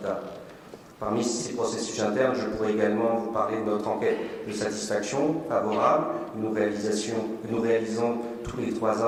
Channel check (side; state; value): both; identical; correlation 1.00